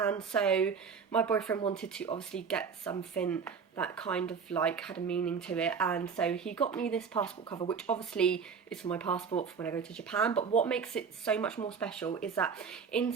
so my boyfriend wanted to obviously get something that kind of like had a meaning to it, and so he got me this passport cover, which obviously is for my passport for when I go to Japan. But what makes it so much more special is that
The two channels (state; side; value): quieter; left; 6.1 dB